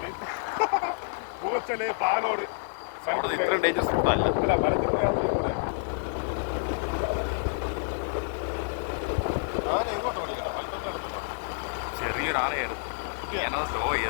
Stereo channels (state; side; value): silent; right; digital silence